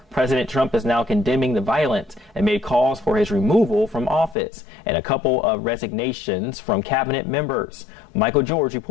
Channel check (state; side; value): drops out; right; at 4.4 s